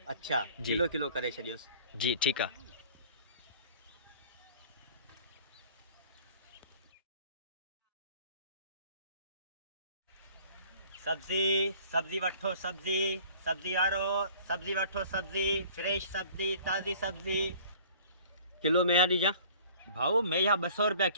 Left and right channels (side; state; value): both; inverted; correlation -0.50